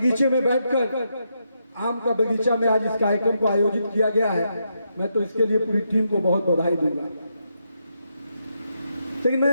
में बैठकर, आम का बगीचा में आज इस कार्यक्रम को आयोजित किया गया है, मैं तो इसके लिए पूरी टीम को बहुत बधाई दूंगा। लेकिन मैं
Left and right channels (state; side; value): inverted; both; correlation -0.81